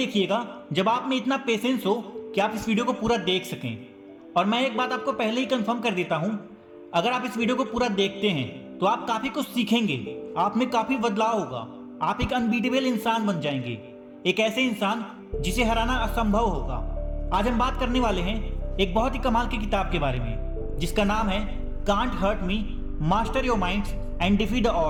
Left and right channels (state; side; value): identical; both; correlation 1.00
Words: जब आप में इतना पेशेंस हो कि आप इस वीडियो को पूरा देख सकें। और मैं एक बात आपको पहले ही कंफर्म कर देता हूं, अगर आप इस वीडियो को पूरा देखते हैं तो आप काफ़ी कुछ सीखेंगे, आप में काफ़ी बदलाव होगा, आप एक अनबीटेबल इंसान बन जाएंगे, एक ऐसे इंसान जिसे हराना असंभव होगा। आज हम बात करने वाले हैं एक बहुत ही कमाल की किताब के बारे में, जिसका नाम है can't hurt me, master your minds and defeat the